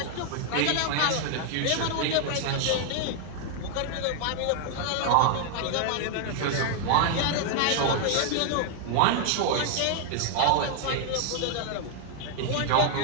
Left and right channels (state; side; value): different; both; correlation 0.00